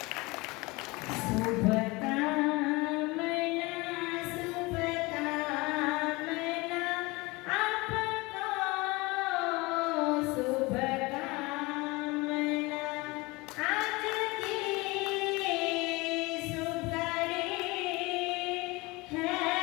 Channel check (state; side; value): quieter; right; 23.8 dB